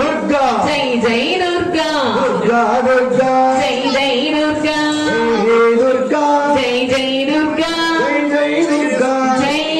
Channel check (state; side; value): identical; both; correlation 1.00